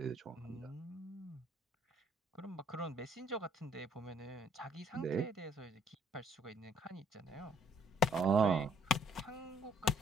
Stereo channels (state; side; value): normal; both; correlation 0.63